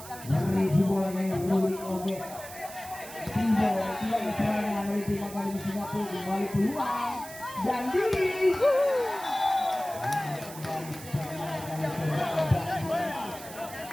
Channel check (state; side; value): noise; right; hiss, 14 dB below the sound